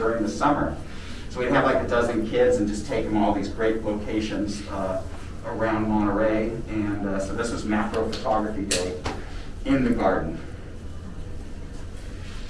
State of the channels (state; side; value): identical; both; correlation 1.00